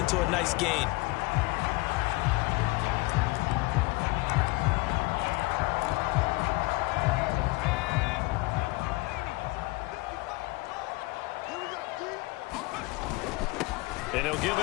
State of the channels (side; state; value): right; quieter; 23.1 dB